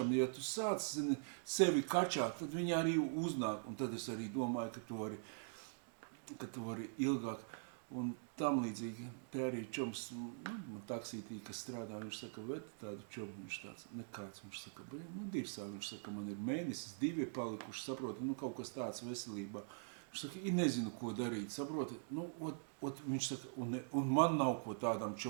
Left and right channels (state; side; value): silent; left; digital silence